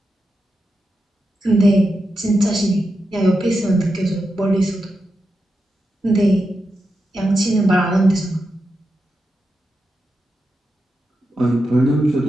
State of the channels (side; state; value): both; normal; correlation 0.88